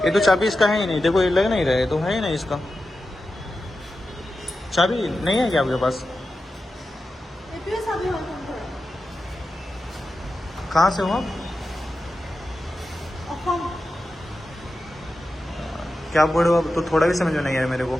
ये तो चाबी इसका है ही नहीं, देखो ये लग नहीं रहा है, तो है ही नहीं इसका। चाबी नहीं है क्या आपके पास? कहाँ से हो आप? क्या बोल रहे हो आप? तो थोड़ा भी समझ में नहीं आया मेरे को।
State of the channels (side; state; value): both; normal; correlation 0.92